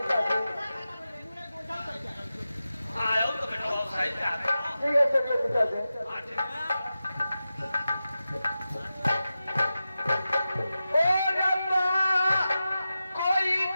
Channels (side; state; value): both; inverted; correlation -0.93